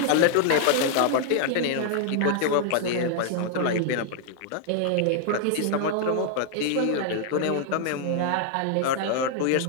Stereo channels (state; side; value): different; both; correlation 0.00